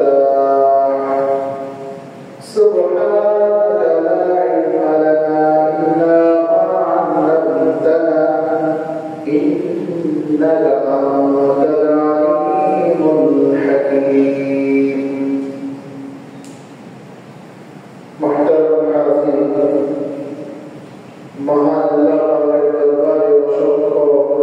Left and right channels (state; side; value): identical; both; correlation 1.00